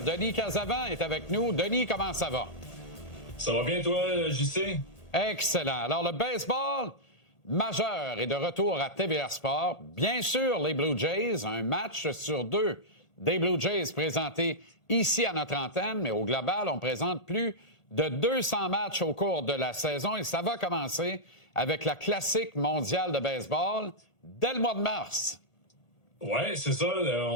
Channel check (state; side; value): late; right; 1.8 ms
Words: Casavant est avec nous. Denis, comment ça va? Ça va bien, toi, JC? Excellent. Alors, le baseball majeur est de retour à TVA Sport. Bien sûr, les Blue Jays, un match sur deux des Blue Jays présentés ici à notre antenne, mais au global, on présente plus de 200 matchs au cours de la saison et ça va commencer avec la classique mondiale de baseball dès le mois de mars. Ouais, c'est ça.